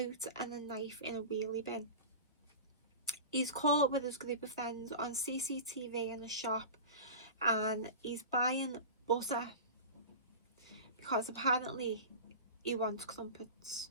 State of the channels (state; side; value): inverted; both; correlation -0.31